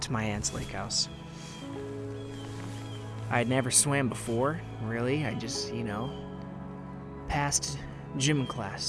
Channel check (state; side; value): identical; both; correlation 1.00